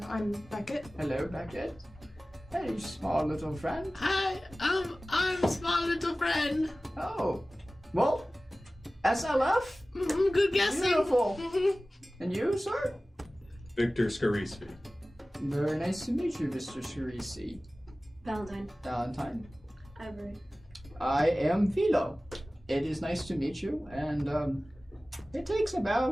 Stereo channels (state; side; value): normal; both; correlation 0.97